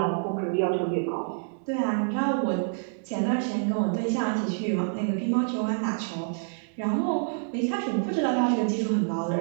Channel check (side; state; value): left; silent; digital silence